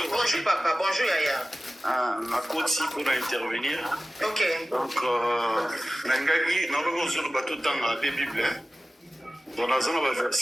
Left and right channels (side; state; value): both; normal; correlation 0.97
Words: Bonjour papa, bonjour Yaya. Ma côte pour intervenir. OK. Donc nangaki na logo sur bateau tanga la Bible. Dans la zone